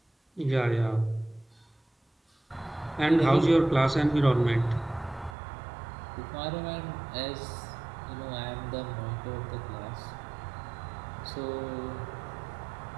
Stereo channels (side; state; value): left; drops out; at 5.4 s